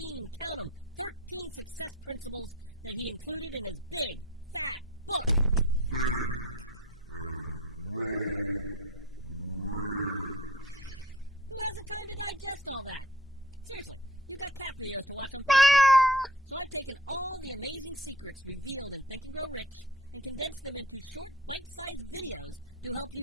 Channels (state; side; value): normal; both; correlation 0.45